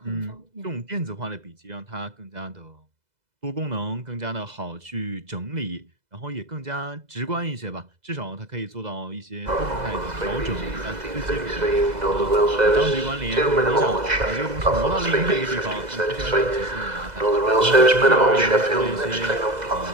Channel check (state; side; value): late; left; 2.0 ms